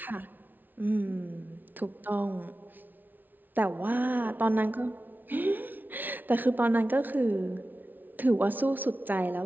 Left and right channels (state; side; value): late; left; 0.086 ms